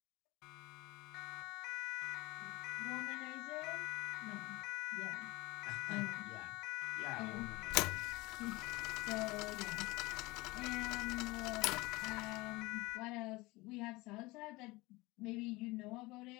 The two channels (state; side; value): quieter; right; 22.1 dB